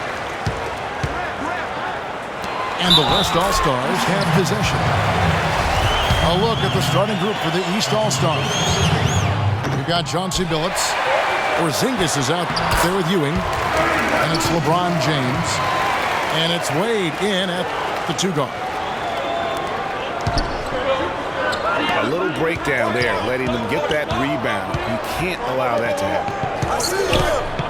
And the West All-Stars have possession. A look at the starting group for the East All-Stars. We've got Chauncey Billups. Porzingis is out there with Ewing. And it's LeBron James. And it's Wade in at the 2 guard. A little breakdown there, letting them get that rebound. You can't allow that to happen.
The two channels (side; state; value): both; identical; correlation 1.00